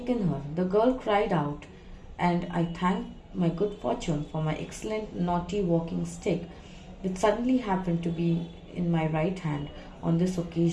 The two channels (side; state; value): both; identical; correlation 1.00